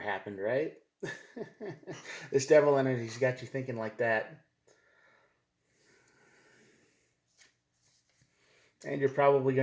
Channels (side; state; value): both; identical; correlation 1.00